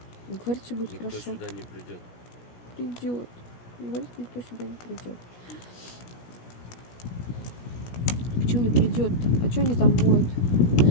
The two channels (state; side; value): late; right; 17 ms